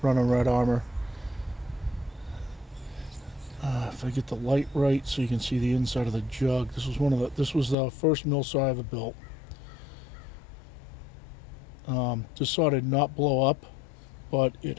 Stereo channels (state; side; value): drops out; right; at 7.8 s